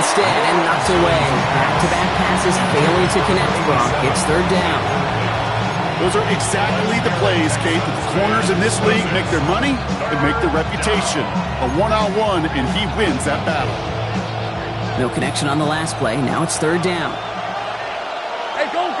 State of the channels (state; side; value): identical; both; correlation 1.00